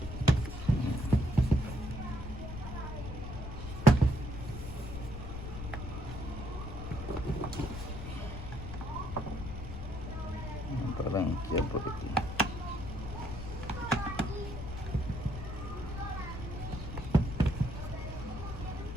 Para ranquear por aquí.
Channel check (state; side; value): noise; left; rumble, 7 dB below the sound